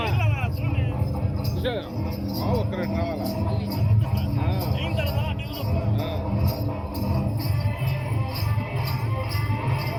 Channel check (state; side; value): identical; both; correlation 1.00